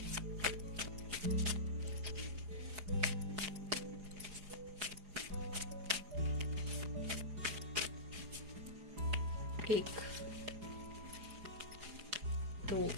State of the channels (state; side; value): late; left; 4.9 ms